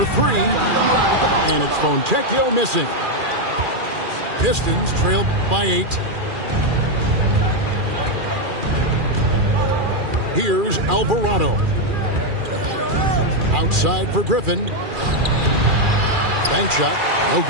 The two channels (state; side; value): late; left; 2.4 ms